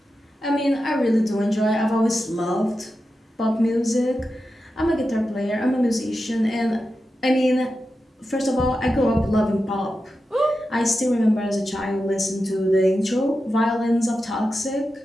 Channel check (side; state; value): both; normal; correlation 0.90